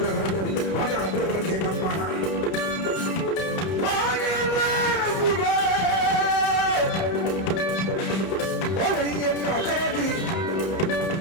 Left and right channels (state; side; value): late; right; 31 ms